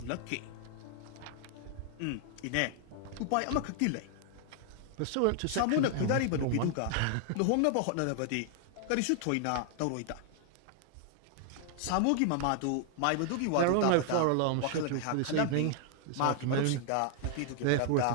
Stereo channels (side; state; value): both; different; correlation 0.00